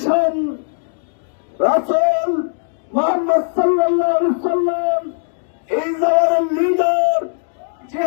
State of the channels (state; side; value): silent; right; digital silence